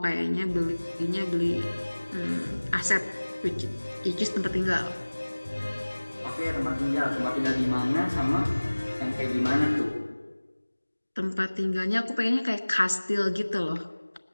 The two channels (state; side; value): inverted; both; correlation -1.00